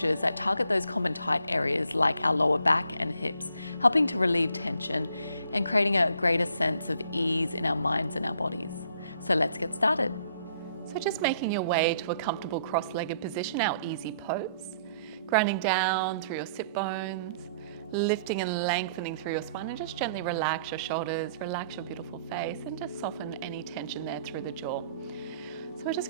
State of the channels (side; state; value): both; inverted; correlation -0.64